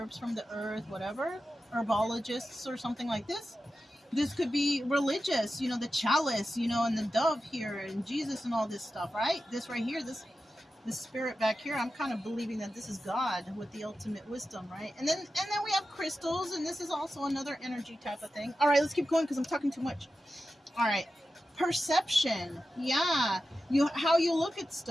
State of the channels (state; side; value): normal; both; correlation 0.92